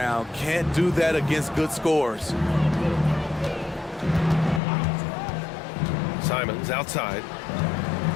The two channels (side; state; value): right; drops out; at 4.6 s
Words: Can't do that against good scores. Simons outside.